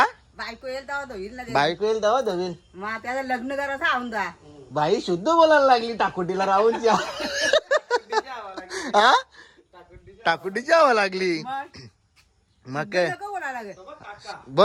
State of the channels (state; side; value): identical; both; correlation 1.00